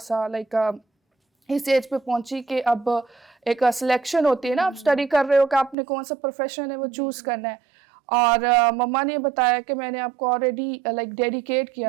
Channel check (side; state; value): left; drops out; at 5.8 s